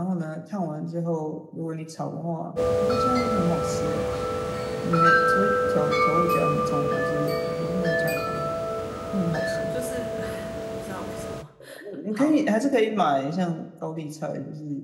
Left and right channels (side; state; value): both; identical; correlation 1.00